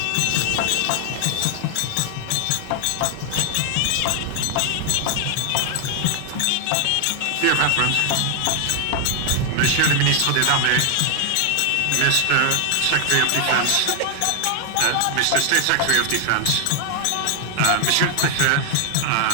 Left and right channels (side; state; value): both; different; correlation 0.00